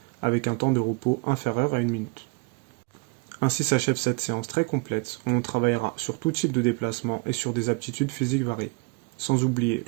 avec un temps de repos inférieur à 1 minute. Ainsi s'achève cette séance très complète où on travaillera sur tout type de déplacement et sur des aptitudes physiques variées. Sans oublier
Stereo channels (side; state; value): left; quieter; 28.8 dB